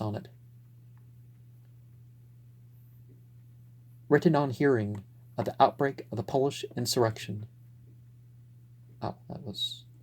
Written on hearing of the outbreak of the Polish insurrection. Oh, that was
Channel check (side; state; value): both; identical; correlation 1.00